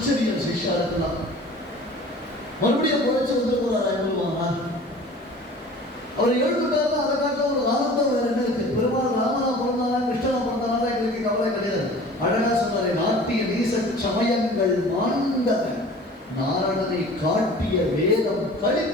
சிஷ்யா இருக்கலாம். மறுபடியும் குறைச்சு வந்து போறாரா எவ்வளவானார்? அவர் எழுந்துட்டாருன்னா அதை காட்ட ஒரு ஆனந்தம் வேற என்ன இருக்கு? பெருமாள் ராமனா பிறந்தாரா கிருஷ்ணனா பிறந்தாரா எங்களுக்கு கவலை கிடையாது. அழகா சொன்னாரே, நாட்டிய நீச சமயங்கள் மாண்டன நாரணனை காட்டிய வேதம்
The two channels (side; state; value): both; normal; correlation 0.44